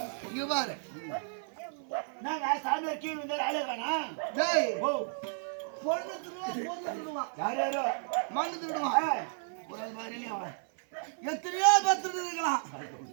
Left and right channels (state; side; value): silent; left; 56 dB below the other